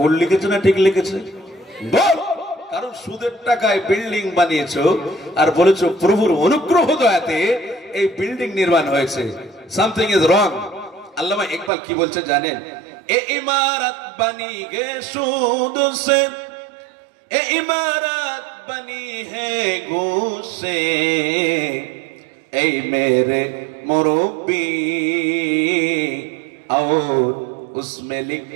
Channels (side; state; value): left; drops out; at 11.7 s